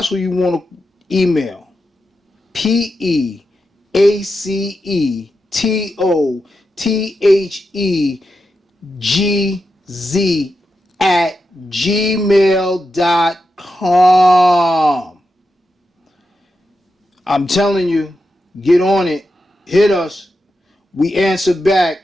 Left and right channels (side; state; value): both; normal; correlation 0.88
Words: what you want to email. PEACETOTHEGZ @gmail.com. I'm telling you, get on it. Hit us. We answer back.